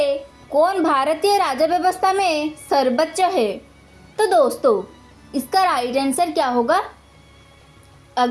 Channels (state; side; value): identical; both; correlation 1.00